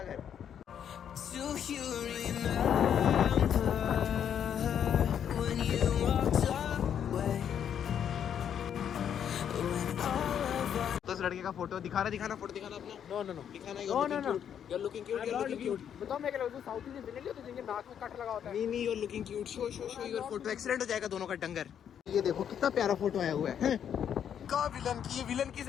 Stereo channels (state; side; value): quieter; right; 8.8 dB